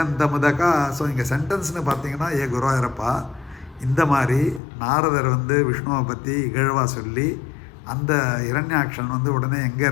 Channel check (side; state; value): right; drops out; at 4.6 s